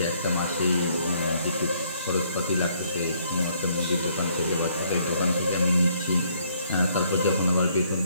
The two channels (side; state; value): both; inverted; correlation -0.67